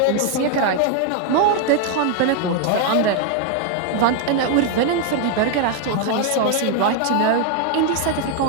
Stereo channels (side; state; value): both; different; correlation 0.00